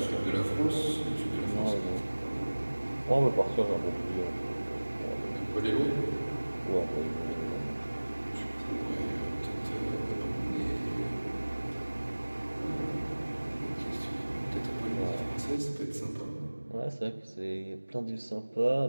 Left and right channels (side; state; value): both; inverted; correlation -1.00